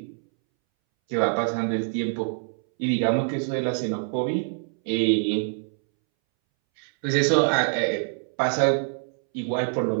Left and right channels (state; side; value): silent; left; 62 dB below the other